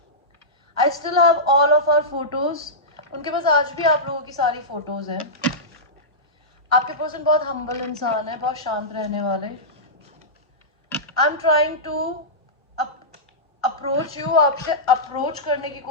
I still have all of our photos, उनके पास आज भी आप लोगों की सारी फोटोज हैं। आपके पर्सन बहुत हम्बल इंसान है, बहुत शांत रहने वाले। I am trying to approach you, आपसे अप्रोच करने की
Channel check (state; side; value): normal; both; correlation -0.14